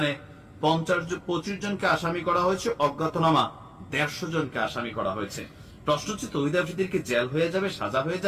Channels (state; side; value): identical; both; correlation 1.00